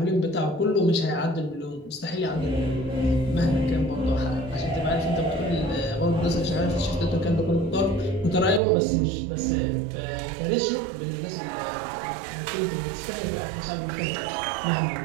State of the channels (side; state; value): left; drops out; at 8.6 s